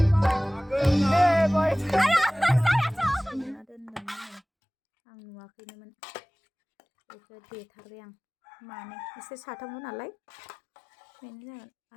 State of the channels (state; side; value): drops out; right; at 4.4 s